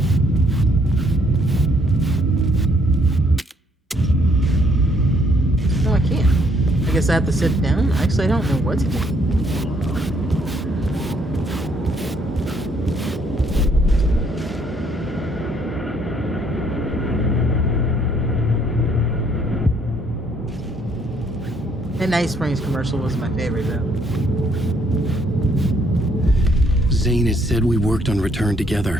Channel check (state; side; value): normal; both; correlation 0.68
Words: No, I can't. I guess I have to sit down. Actually, I don't know what to do. That Night Springs commercial was my favorite, though. Zane had said we worked on Return